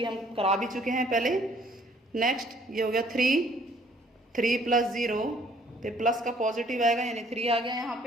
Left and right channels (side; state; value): both; normal; correlation 0.60